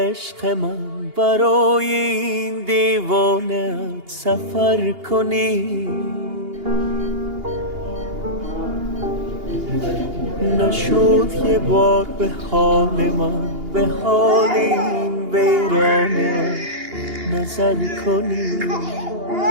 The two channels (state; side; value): late; left; 2.8 ms